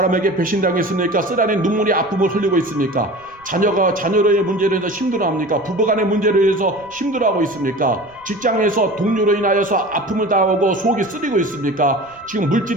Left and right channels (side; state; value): right; noise; rumble, 29 dB below the sound